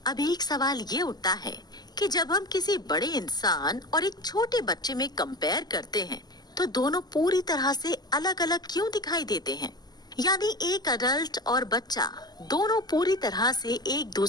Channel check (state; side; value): late; right; 0.20 ms